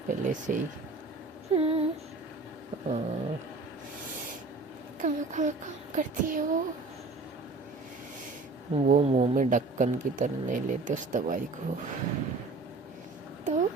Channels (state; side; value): quieter; left; 3.6 dB